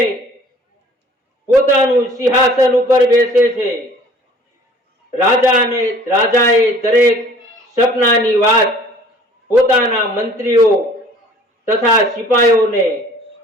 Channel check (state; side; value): normal; both; correlation 0.51